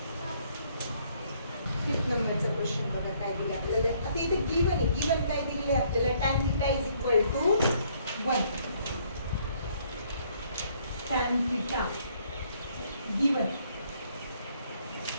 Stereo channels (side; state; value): both; inverted; correlation -0.66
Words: 5th नंबरचा क्वेश्चन बघा काय दिले आपल्याला. आता इथे गिवन आहे. गिवन काय दिलेले आपल्याला tan theta is equal to 1. tan theta given